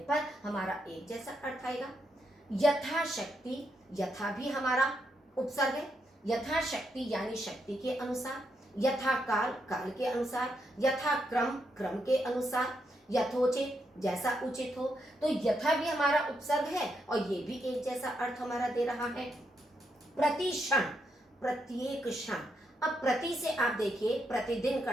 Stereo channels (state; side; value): normal; both; correlation 0.80